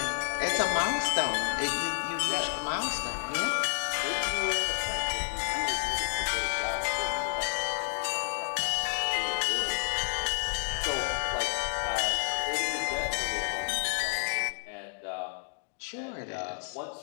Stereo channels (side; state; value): right; silent; digital silence